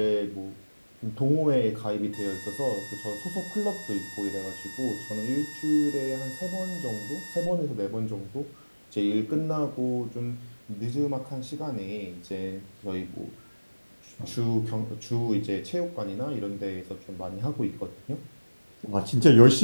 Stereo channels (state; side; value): inverted; both; correlation -1.00